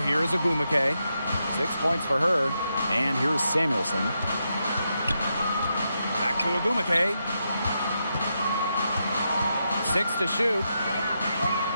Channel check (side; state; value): both; inverted; correlation -0.84